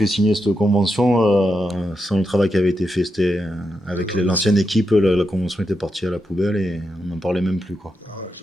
signer cette convention sans le travail qui avait été fait. C'était avec l'ancienne équipe, la convention était partie à la poubelle et on n'en parlait même plus, quoi.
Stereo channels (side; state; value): both; normal; correlation 0.85